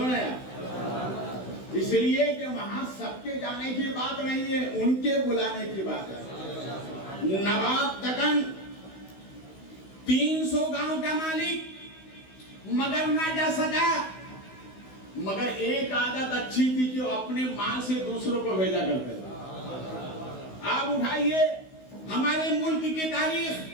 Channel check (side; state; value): right; late; 16 ms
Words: نا یار. اس لیے کہ وہاں سب کے جانے کی بات نہیں ہے، ان کے بلانے کی بات ہے. نواب تکن 300 گاؤں کا مالک مگر نہ جا سکا، مگر ایک عادت اچھی تھی کہ وہ اپنے مال سے دوسروں کو بھیجا کرتے تھے. آپ اٹھائیے ہمارے ملک کی تاریخ،